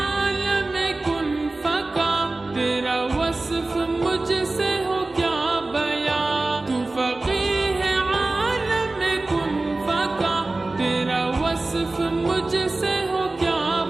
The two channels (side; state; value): left; quieter; 3.1 dB